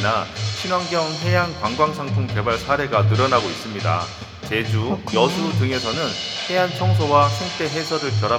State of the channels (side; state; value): both; identical; correlation 1.00